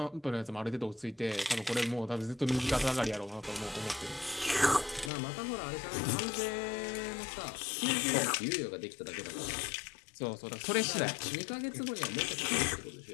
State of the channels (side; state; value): right; drops out; at 5.1 s